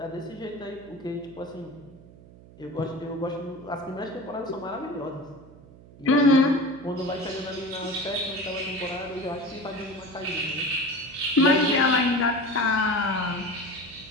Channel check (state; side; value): noise; right; hum, 21 dB below the sound